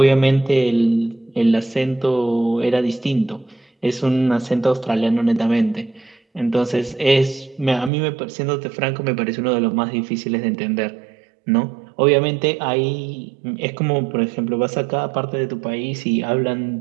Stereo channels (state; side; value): drops out; left; at 7.9 s